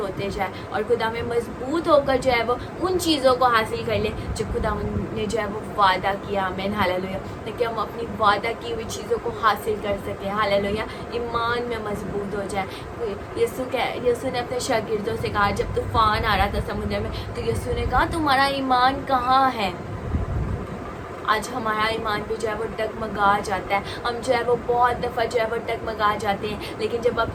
जाए और खुदा में मजबूत होकर जो है वो उन चीज़ों को हासिल कर ले जो खुदा ने जो है वो वादा किया। आमीन, हालेलुया। ताकि हम अपनी वादा की हुई चीज़ों को हासिल कर सकें। हालेलुया। ईमान में मजबूत हो जाए। यीशु ने अपने शागिर्दों से कहा, जब तूफान आ रहा था समुद्र में, तो यीशु ने कहा तुम्हारा ईमान कहाँ है। आज हमारा ईमान भी जो है वो डगमगा जाता है। हम जो है वो बहुत दफ़ा जो है वो डगमगा जाते हैं, लेकिन जब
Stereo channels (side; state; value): both; identical; correlation 1.00